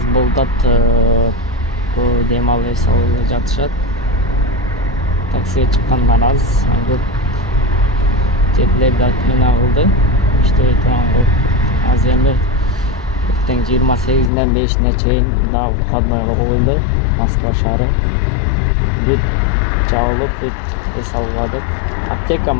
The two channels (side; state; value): right; drops out; at 14.3 s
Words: bo'ldi. Bu demalga jatishadi. Taksiga chiqqandan az. Chetlarda meni oldi. İşte tamam. Az endi ertang 28dan 5-gacha daha xizmatga qo'yildi. Moskva shahri. Bit chalib, bit esalg'adik. Apteka